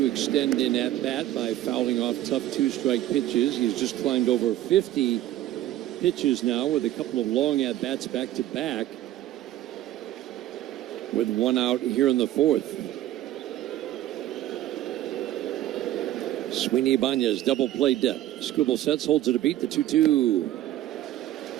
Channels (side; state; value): left; quieter; 13.5 dB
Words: extend in at bat by fouling off tough 2-strike pitches. He's just climbed over 50 pitches now with a couple of long at bats back to back, with 1 out here in the 4th. Sweeney Ibanez, double play depth. Skubal sets, holds it a beat, the 2-2. A